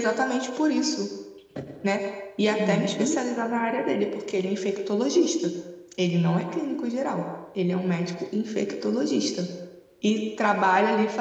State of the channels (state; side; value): identical; both; correlation 1.00